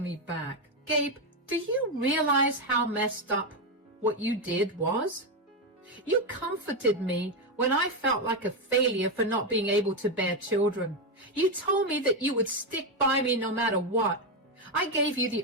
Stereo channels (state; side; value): normal; both; correlation 0.07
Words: me back. Gabe, do you realize how messed up what you did was? You comforted me when I felt like a failure for not being able to bear children. You told me that you would stick by me no matter what. I gave you the